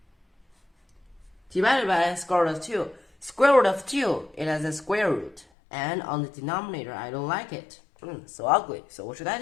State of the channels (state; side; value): drops out; right; at 5.5 s